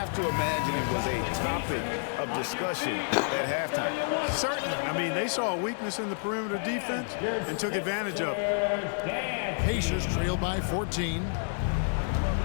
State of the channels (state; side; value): silent; right; digital silence